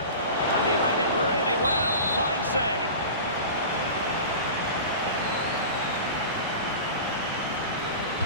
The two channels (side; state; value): both; inverted; correlation -0.34